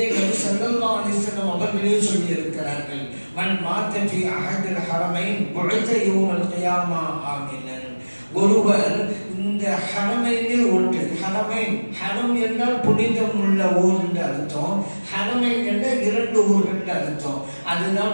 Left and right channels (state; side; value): inverted; both; correlation -1.00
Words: நபி ஸல்லல்லாஹு அலைஹி வஸல்லம் அவர்களே சொல்லி இருக்கிறார்கள். மன் மாத ஃபீ அஹதில் ஹரமைன் புஇஸ யௌமல் கியாமா ஆமினன். ஒருவர் இந்த ஹரமைனில் ஒன்று, ஹரமைன், ஹரம் என்றால் புனிதம் உள்ள ஊர் என்று அர்த்தம், ஹரமைன் என்ற 2 ஊர்கள் என்று அர்த்தம். அதுதான்